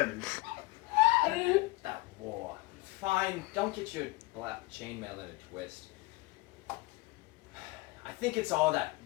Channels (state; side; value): quieter; right; 22.2 dB